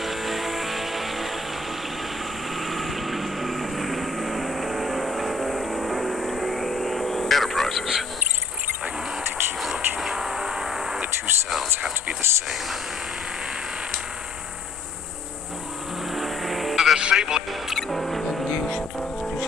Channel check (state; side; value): quieter; right; 3.7 dB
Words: Enterprises. I need to keep looking. The two sounds have to be the same. The disabling